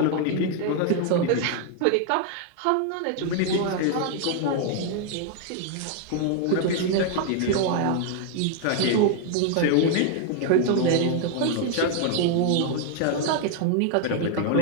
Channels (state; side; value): different; both; correlation 0.00